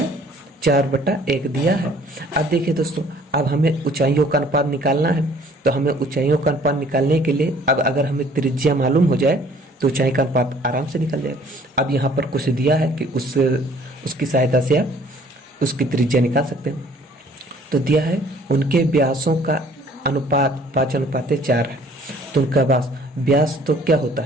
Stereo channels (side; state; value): both; normal; correlation 0.56